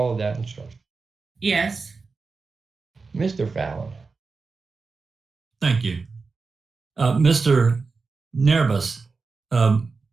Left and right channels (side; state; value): left; quieter; 4.4 dB